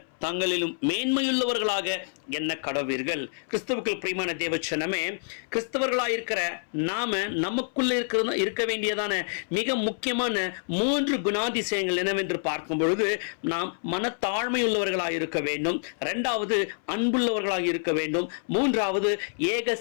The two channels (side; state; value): right; silent; 60 dB below the other